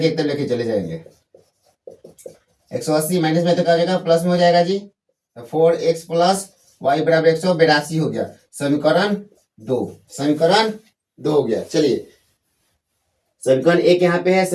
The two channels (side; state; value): both; identical; correlation 1.00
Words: एक तरफ लेके चले जाएंगे। 180 माइनस में तो क्या हो जाएगा? प्लस में हो जाएगा जी। 4x+y बराबर 182 हो गया। समीकरण 2 हो गया। चलिए समीकरण 1 यहाँ पे है,